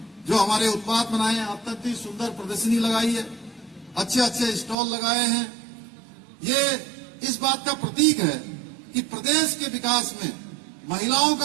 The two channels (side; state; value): left; drops out; at 4.8 s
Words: जो हमारे उत्पाद बनाए हैं, अत्यंत ही सुंदर प्रदर्शनी लगाई है, अच्छे अच्छे स्टॉल लगाए हैं। ये इस बात का प्रतीक है कि प्रदेश के विकास में महिलाओं